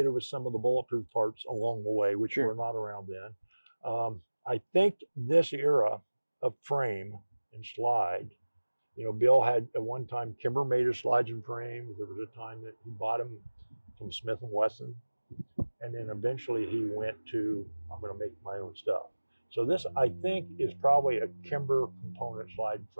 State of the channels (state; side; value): inverted; both; correlation -1.00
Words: with some of the bulletproof parts along the way, which were not around then. I think this era of frame and slide, Bill had at one time, Kimber made his slides and frames. There was a time that he bought them from Smith & Wesson. And then eventually he went to, I'm going to make my own stuff. So this, I think, is probably a Kimber component slide